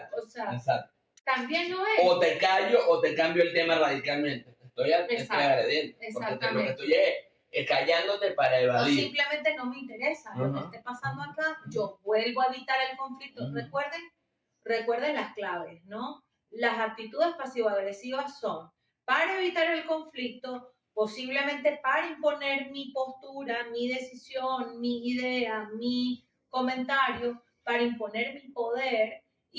o sea, exacto. También lo es. O te callo o te cambio el tema radicalmente. Estoy agrediendo. Porque lo que estoy es callándote para evadir. O simplemente no me interesa lo que esté pasando acá. Yo vuelvo a evitar el conflicto. Recuerden las claves, ¿no? Las actitudes pasivo-agresivas son para evitar el conflicto, posiblemente para imponer mi postura, mi decisión, mi idea, mi comentario, para imponer mi poder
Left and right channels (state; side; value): identical; both; correlation 1.00